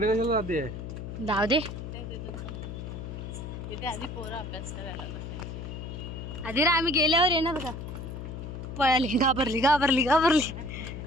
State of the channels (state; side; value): noise; left; hum, 8 dB below the sound